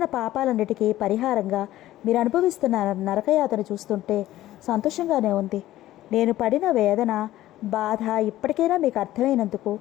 పాపాలన్నిటికీ పరిహారంగా మీరు అనుభవిస్తున్న నరకయాతను చూస్తుంటే సంతోషంగానే ఉంది. నేను పడిన వేదన, బాధ ఇప్పటికైనా మీకు అర్థమైనందుకు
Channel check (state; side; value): quieter; right; 14.8 dB